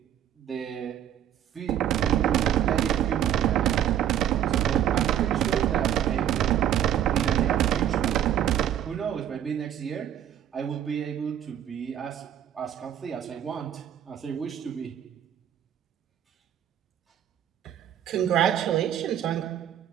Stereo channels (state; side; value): quieter; left; 10.7 dB